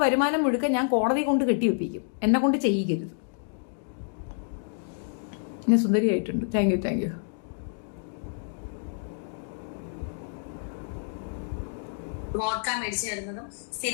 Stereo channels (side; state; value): right; silent; digital silence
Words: വരുമാനം മുഴുക്ക ഞാൻ കോടതി കൊണ്ട് കെട്ടിവെപ്പിക്കും. എന്നെ കൊണ്ട് ചെയ്യിക്കരുത്. ഞാൻ സുന്ദരിയായിട്ടുണ്ട്. Thank you. വോഡ്ക മേടിച്ചു തരുന്നതും